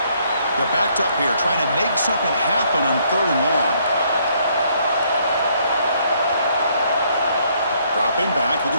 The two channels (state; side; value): inverted; both; correlation -0.68